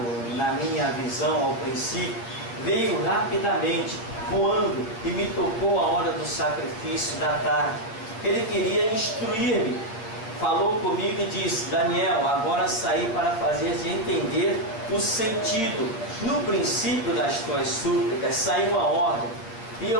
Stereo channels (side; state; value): right; late; 8.8 ms